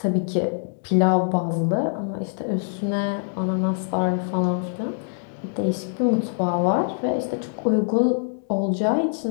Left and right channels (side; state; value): right; silent; digital silence